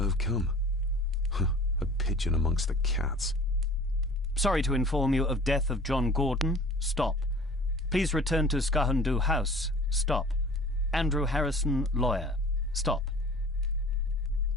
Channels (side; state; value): both; normal; correlation 0.45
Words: come. A pigeon amongst the cats. Sorry to inform you of death of John Gordon. Stop. Please return to Skahundu House. Stop. Andrew Harrison, lawyer. Stop.